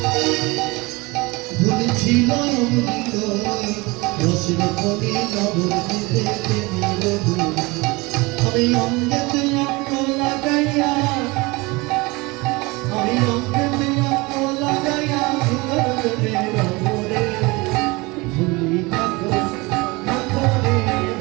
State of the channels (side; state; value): left; quieter; 24.3 dB